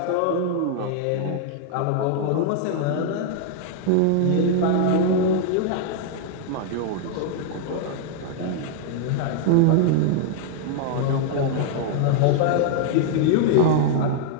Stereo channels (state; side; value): different; both; correlation 0.00